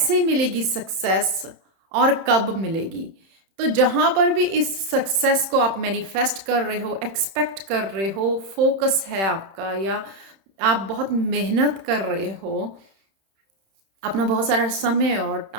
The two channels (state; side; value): late; left; 31 ms